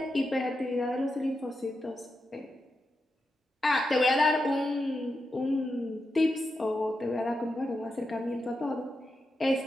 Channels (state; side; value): normal; both; correlation 0.87